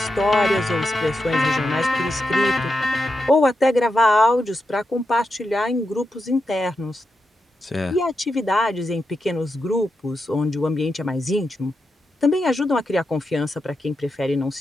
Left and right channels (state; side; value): normal; both; correlation 0.87